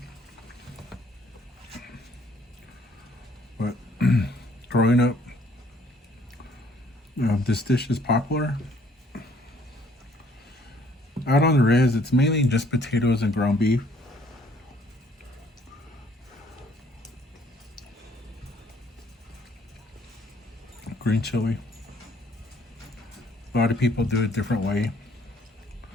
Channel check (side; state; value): both; normal; correlation 0.61